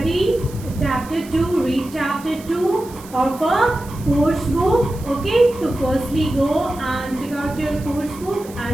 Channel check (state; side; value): noise; right; hiss, 20 dB below the sound